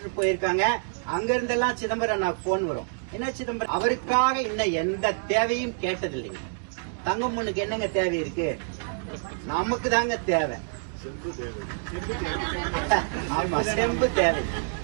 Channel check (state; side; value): silent; left; digital silence